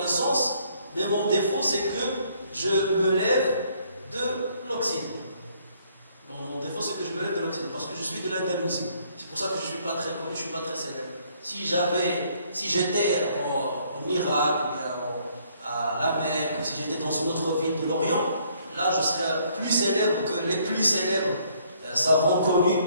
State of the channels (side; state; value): both; inverted; correlation -0.65